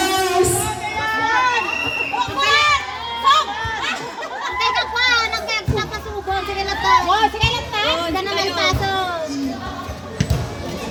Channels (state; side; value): identical; both; correlation 1.00